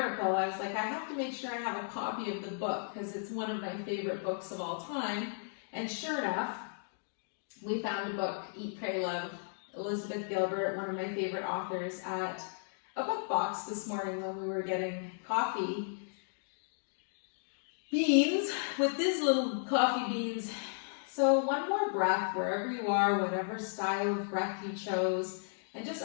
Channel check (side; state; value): right; silent; digital silence